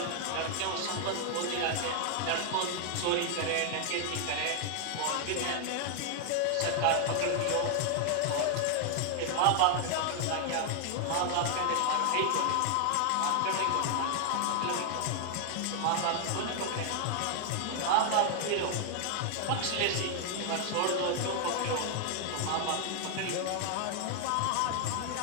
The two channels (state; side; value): different; both; correlation 0.00